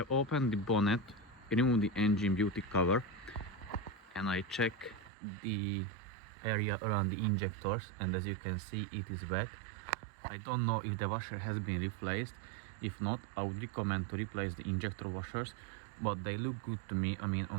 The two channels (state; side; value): drops out; left; at 5.1 s